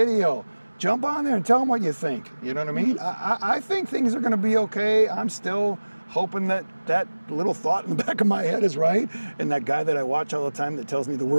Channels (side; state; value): both; inverted; correlation -1.00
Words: Jump on there and tell them what you think. You know what I mean? I think things are going to be okay. I'm still hoping that that little thought in the back of my head is right. And that guy that I watch all the time that tells me the